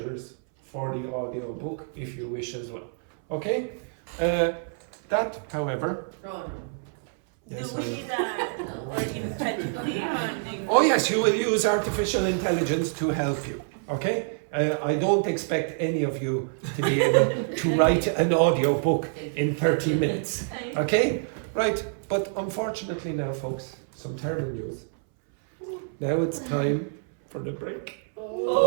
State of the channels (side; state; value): left; silent; 60 dB below the other